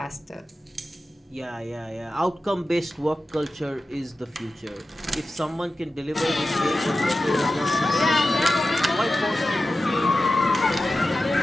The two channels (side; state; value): both; normal; correlation 0.94